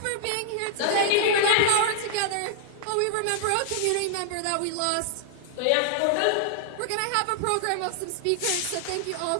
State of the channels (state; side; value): different; both; correlation -0.01